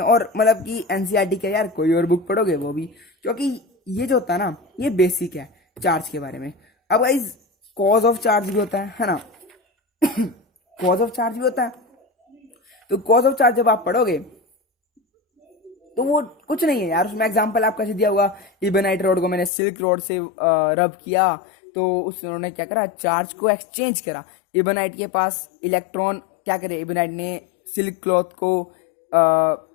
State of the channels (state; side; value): drops out; right; at 19.5 s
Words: मतलब कि एनसीईआरटी क्या यार, कोई और बुक पढ़ोगे वो भी, क्योंकि ये जो होता है ना, ये बेसिक है चार्ज के बारे में। अब गाइज कॉज ऑफ चार्ज भी होता है ना कॉज ऑफ चार्ज भी होता है। तो कॉज ऑफ चार्ज जब आप पढ़ोगे तो वो कुछ नहीं है यार, उसमें एग्जांपल आपका दिया हुआ, इबोनाइट रोड को मैंने सिल्क रोड से रब किया, तो उन्होंने क्या करा, चार्ज को एक्सचेंज करा। इबोनाइट के पास इलेक्ट्रॉन क्या करे, इबोनाइट ने सिल्क क्लॉथ को